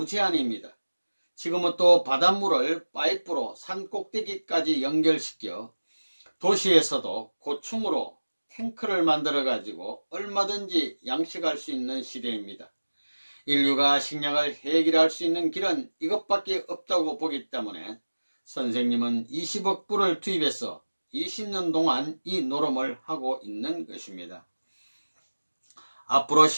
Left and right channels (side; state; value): both; inverted; correlation -1.00